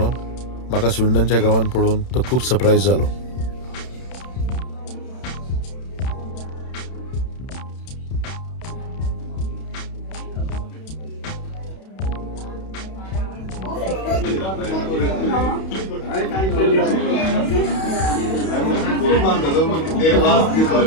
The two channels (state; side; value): late; right; 31 ms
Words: म्हाका स्विंडनच्या गांवांत पळोवन तो खूब सरप्रायज जालो.